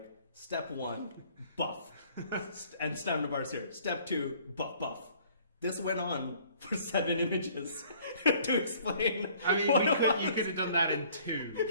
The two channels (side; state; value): both; inverted; correlation -0.57